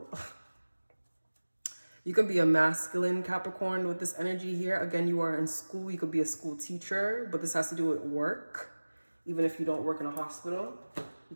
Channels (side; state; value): both; inverted; correlation -1.00